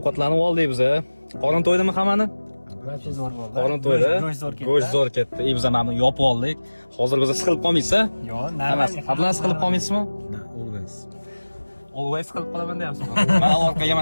oldik biz. Qorin to'ydimi hammani? Barcha zo'r bo'ldi. Qorin to'ydi. Go'sht zo'r ketdi. Biz mana yopib oldik. Hozir biz siqilib qolmaysiz-a? Yo'q, emas. Adlan siqilib qolmaysizmi? Always. Always siqilib qolaman deyapsizmi? Mana orqaga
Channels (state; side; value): inverted; both; correlation -1.00